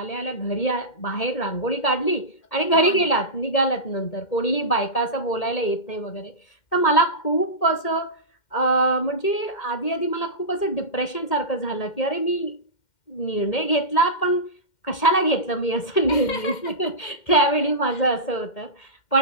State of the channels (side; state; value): right; late; 2.1 ms